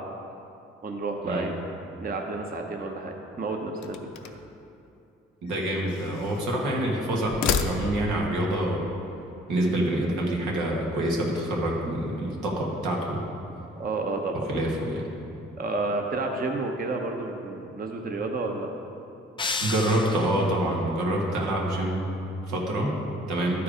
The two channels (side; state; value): both; normal; correlation 0.53